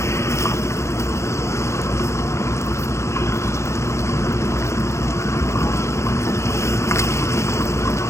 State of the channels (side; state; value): right; late; 0.14 ms